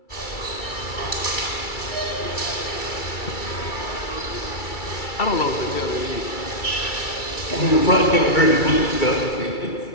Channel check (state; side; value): late; right; 2.3 ms